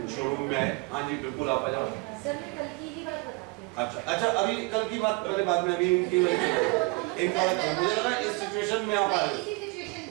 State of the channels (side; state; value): left; quieter; 27.4 dB